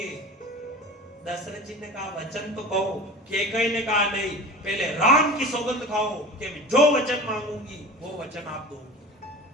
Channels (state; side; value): normal; both; correlation 0.37